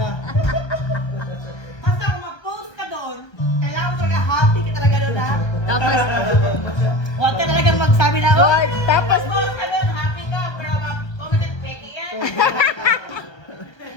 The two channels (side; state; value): right; late; 1.3 ms